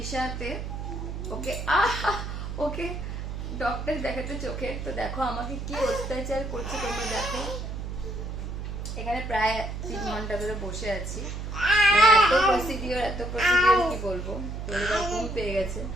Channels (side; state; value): right; noise; hum, 6 dB below the sound